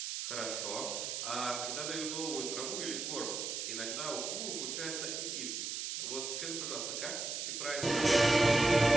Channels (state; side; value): noise; right; hiss, 4 dB below the sound